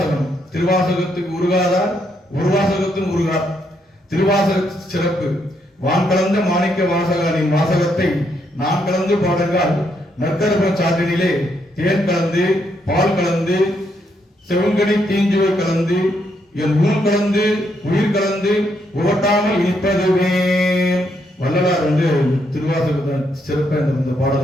திருவாசகத்துக்கு உருகாதார் ஒரு வாசகத்தின் உருகார். திருவாசக சிறப்பு. வான் கலந்த மாணிக்க வாசகனின் வாசகத்தை நான் கலந்து பாடுங்கால் நற்கரப சாற்றினிலே தேன் கலந்து பால் கலந்து செவங்கனி தீஞ்சுவை கலந்து என் ஊன் கலந்து உயிர் கலந்து உவட்டாமல் இனிப்பதுவே. வள்ளலார் திருவாசகத்தை சிறப்பை இந்த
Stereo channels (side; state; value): both; normal; correlation 0.76